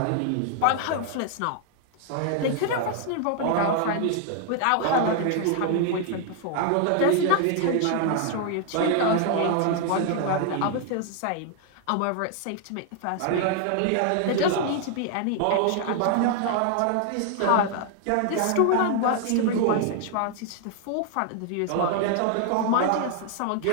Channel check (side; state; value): both; different; correlation 0.00